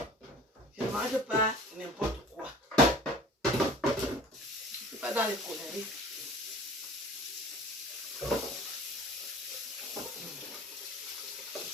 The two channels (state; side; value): normal; both; correlation 0.44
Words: Je ne mange pas n'importe quoi. Je ne suis pas dans les conneries.